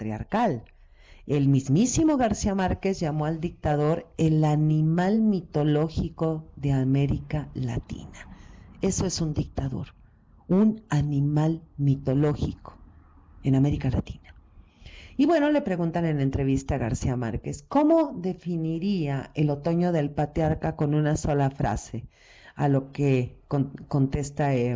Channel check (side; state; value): both; identical; correlation 1.00